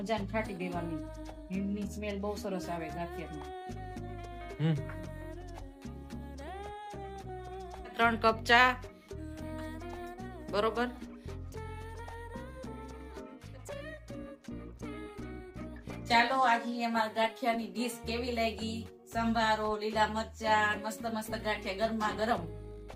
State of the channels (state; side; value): identical; both; correlation 1.00